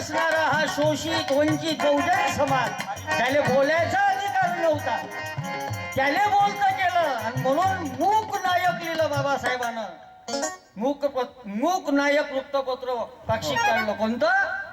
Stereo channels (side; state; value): both; identical; correlation 1.00